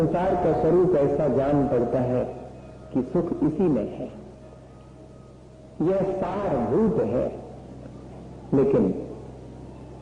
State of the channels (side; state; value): both; identical; correlation 1.00